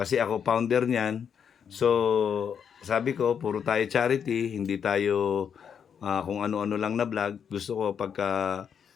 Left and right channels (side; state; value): right; quieter; 7.5 dB